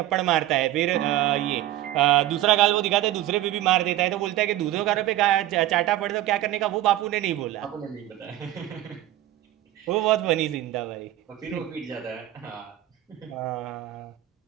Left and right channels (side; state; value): left; quieter; 14.1 dB